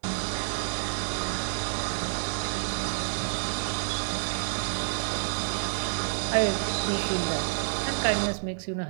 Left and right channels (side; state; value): left; silent; 59 dB below the other